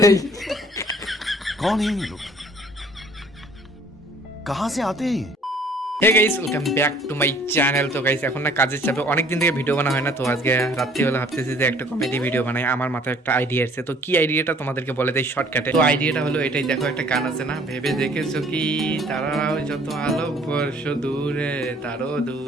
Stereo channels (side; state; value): both; normal; correlation 0.56